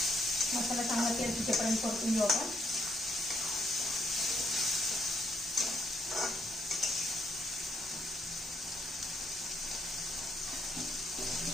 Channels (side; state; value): both; normal; correlation 0.72